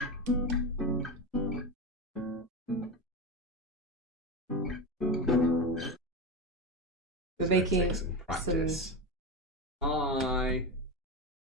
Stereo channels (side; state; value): both; normal; correlation 0.18